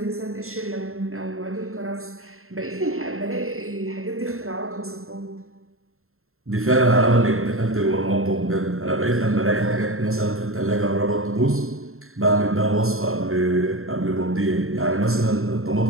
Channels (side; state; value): left; late; 0.62 ms